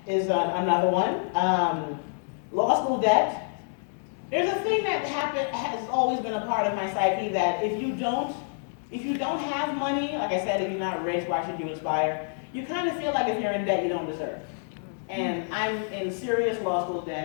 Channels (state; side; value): silent; right; digital silence